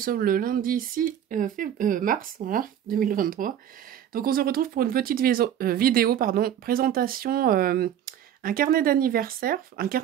le lundi 6 mars, voilà, 2023. Donc on se retrouve pour une petite vidéo, présentation, un carnet d'anniversaire,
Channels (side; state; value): left; quieter; 10.1 dB